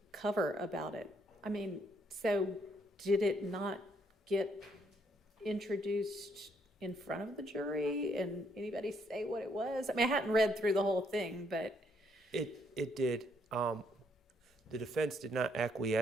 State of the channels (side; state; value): both; normal; correlation 0.71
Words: cover about it? I mean, so did it not get introduced in front of the jury and anybody say what it was? I mean, I hadn't read through the whole thing, but. It did. The defense did not